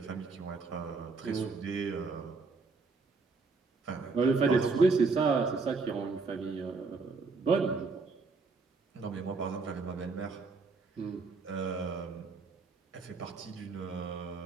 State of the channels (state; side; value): quieter; left; 4.3 dB